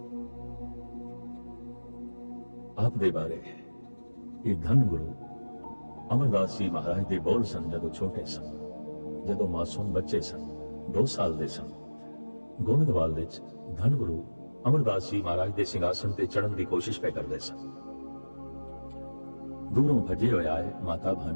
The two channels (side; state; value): both; inverted; correlation -1.00